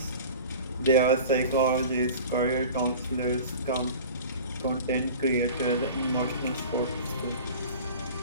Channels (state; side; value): inverted; both; correlation -0.39